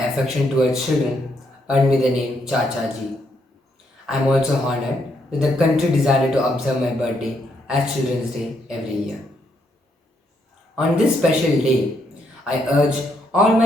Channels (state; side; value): normal; both; correlation 0.75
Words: towards children earned me the name Chachaji. I am also honored that the country decided to observe my birthday as Children's Day every year. On this special day, I urge all